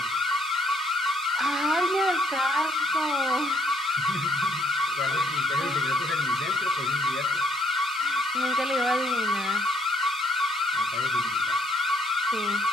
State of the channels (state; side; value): normal; both; correlation 0.68